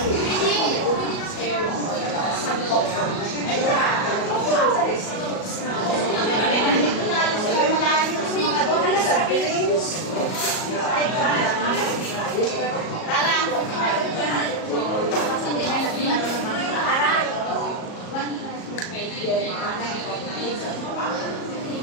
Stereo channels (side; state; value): right; late; 37 ms